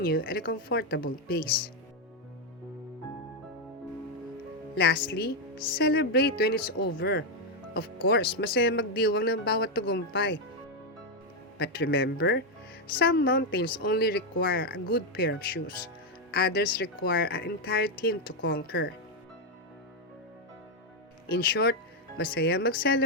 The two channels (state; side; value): normal; both; correlation 0.03